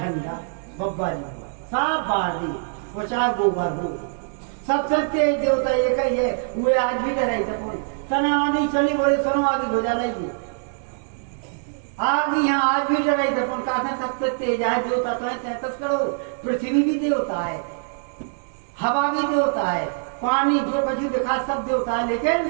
बब्बा जी हो, सब बार दी वो, चाहे गोबर हो, सबसे तेज देवता एक ही है। वे आज भी डराई थे तना आदि चली बोले सुनो आगे हो जाना ही आदि यहाँ आज भी डराई थे कहा सबसे तेज है देवता तो है 33 करोड़। पृथ्वी भी देवता है, हवा भी देवता है, पानी जो कुछ दिखा सब देवता है,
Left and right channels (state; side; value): silent; left; digital silence